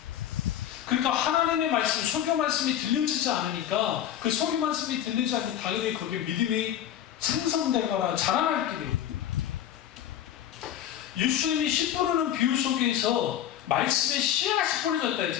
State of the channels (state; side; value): quieter; right; 10.9 dB